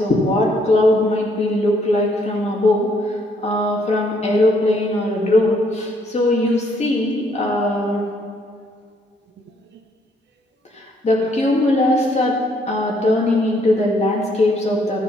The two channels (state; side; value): normal; both; correlation 0.68